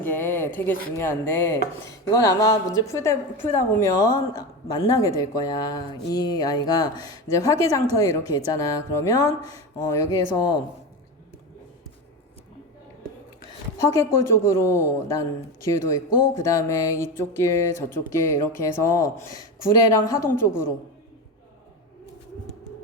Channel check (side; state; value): both; normal; correlation 0.21